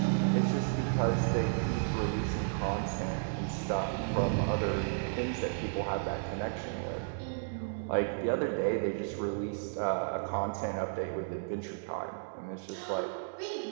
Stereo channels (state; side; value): silent; left; digital silence